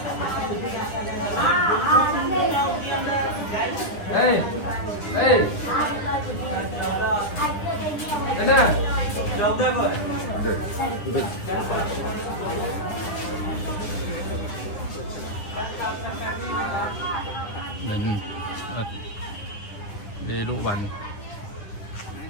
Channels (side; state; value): right; late; 9.8 ms